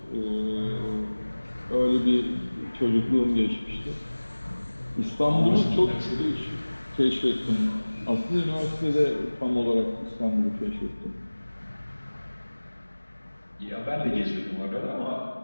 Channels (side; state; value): both; inverted; correlation -1.00